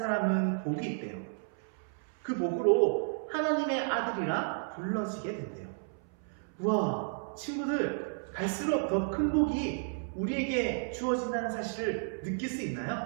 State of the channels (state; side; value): silent; left; 56 dB below the other